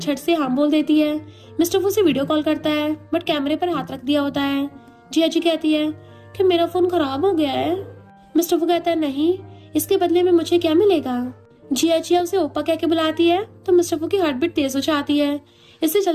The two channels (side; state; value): both; identical; correlation 1.00